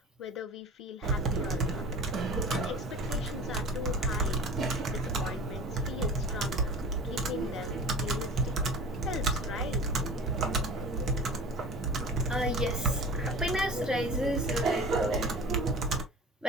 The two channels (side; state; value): both; normal; correlation 0.38